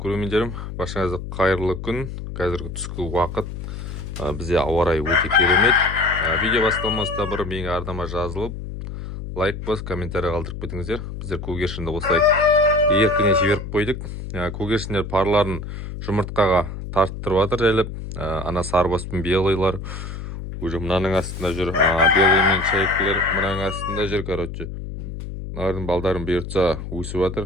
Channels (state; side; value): noise; left; hum, 8 dB below the sound